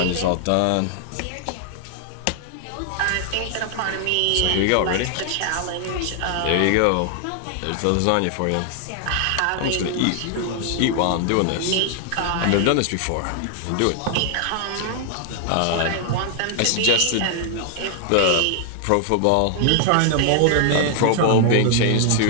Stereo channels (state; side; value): different; both; correlation 0.00